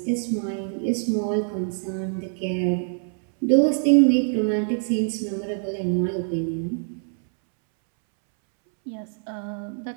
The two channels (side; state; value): left; silent; 62 dB below the other